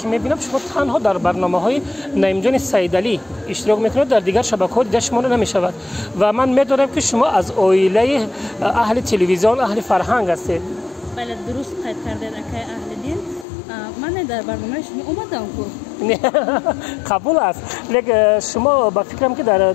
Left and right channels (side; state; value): right; drops out; at 13.5 s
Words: میبینم شما تنها در برنامه های نمیدونی سیدعلی اشتراک میکنید، در دیگر شبکه ها دیده شما رو نمیشود و من میدونم که شما از عائله اهل تلویزیون اهل فرهنگ هستید. بله درست قید کردید اکای اهل دین. من در برنامه شما اومدم قبول است، لیکن شما با فکرم که در